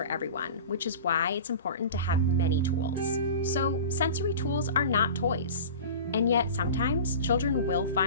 everyone, which is why it's important to have many tools. So, sensory tools are not toys, and yet sometimes children will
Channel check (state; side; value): inverted; both; correlation -0.35